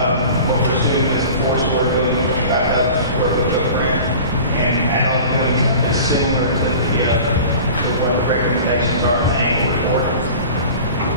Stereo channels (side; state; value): both; inverted; correlation -0.39